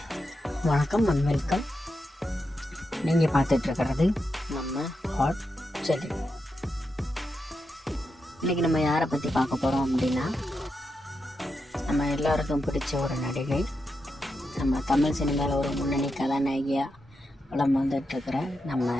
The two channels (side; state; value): both; normal; correlation 0.86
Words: வணக்கம் அண்ட் வெல்கம். நீங்கள் பார்த்துட்ருக்கிறது நம்ம ஹாட் செல்லி. இன்றைக்கி நம்ம யாரை பற்றி பார்க்க போகிறோம் அப்படின்னா, நம்ம எல்லாருக்கும் பிடிச்ச ஒரு நடிகை, நம்ம தமிழ் சினிமாவில் ஒரு முன்னணி கதாநாயகியாக படம் வந்துட்டுருக்கிற நம்ம